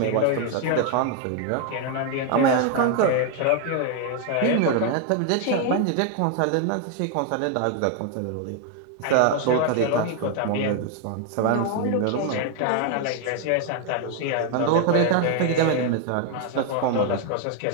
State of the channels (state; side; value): different; both; correlation 0.01